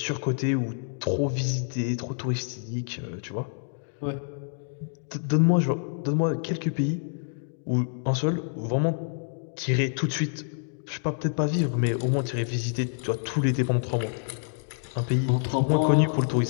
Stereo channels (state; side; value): silent; right; digital silence